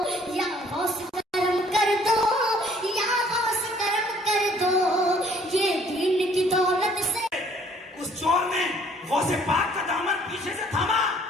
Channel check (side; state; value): both; normal; correlation 0.59